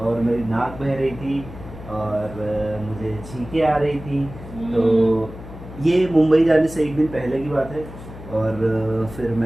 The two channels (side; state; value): left; noise; hum, 14 dB below the sound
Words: मेरी नाक बह रही थी और मुझे छींकें आ रही थी। तो ये मुंबई जाने से एक दिन पहले की बात है। और फिर